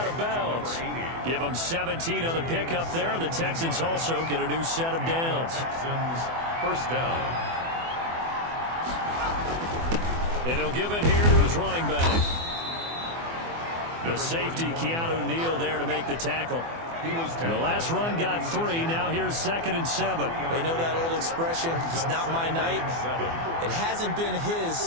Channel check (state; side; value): late; left; 24 ms